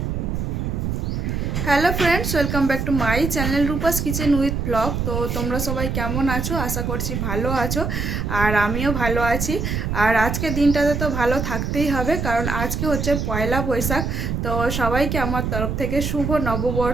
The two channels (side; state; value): right; noise; rumble, 2 dB below the sound